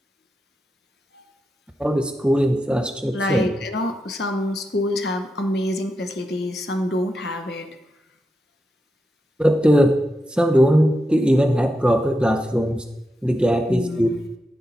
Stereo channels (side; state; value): both; normal; correlation 0.87